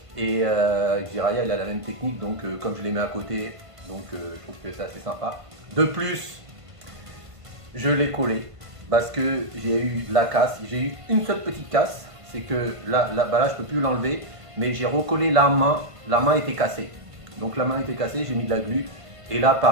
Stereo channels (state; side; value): late; left; 1.5 ms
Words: Et Jiraiya il a la même technique, donc comme je les mets à côté, donc je trouve que c'est assez sympa. De plus, je l'ai collé parce que j'ai eu la casse, j'ai eu une seule petite casse, c'est que là je peux plus l'enlever, mais j'ai recollé la main était cassée. Donc la main était cassée, j'ai mis de la glu et là